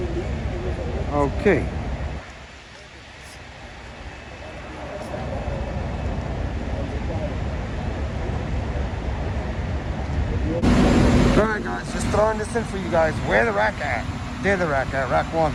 Okay. Alright guys, just throwing this in for you guys. Where the rack at? There the rack at, rack 1.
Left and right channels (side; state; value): both; identical; correlation 1.00